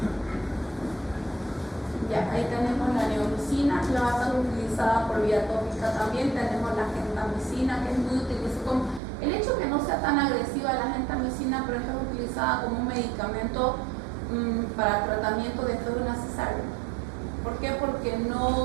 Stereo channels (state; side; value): drops out; left; at 9.0 s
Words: Ya, Ahí tenemos la neomicina, que va a ser utilizada por vía tópica también. Tenemos la gentamicina, que es muy utilizada. El hecho que no sea tan agresiva la gentamicina, pero es utilizada como un medicamento para tratamiento después de una cesárea. ¿Por qué? Porque